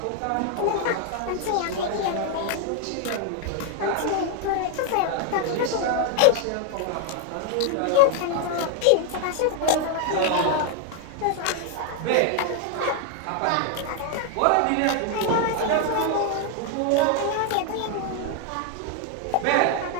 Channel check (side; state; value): both; different; correlation 0.00